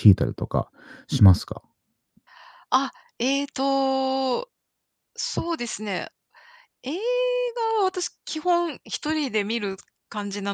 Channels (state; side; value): identical; both; correlation 1.00